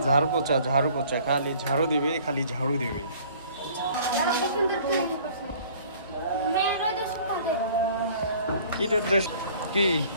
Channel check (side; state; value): both; inverted; correlation -0.52